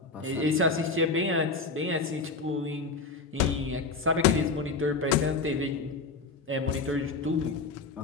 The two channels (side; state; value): right; quieter; 4.1 dB